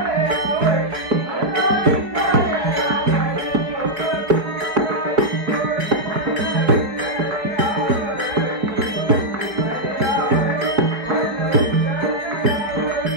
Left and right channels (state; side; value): late; left; 4.6 ms